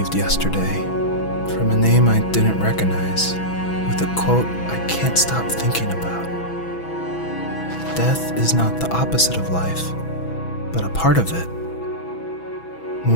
yesterday from a name I didn't recognize, with a quote I can't stop thinking about. Death is not the opposite of life, but a part of it.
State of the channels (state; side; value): late; right; 6.1 ms